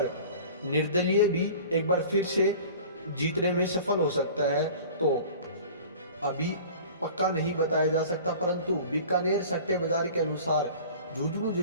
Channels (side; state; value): both; inverted; correlation -0.42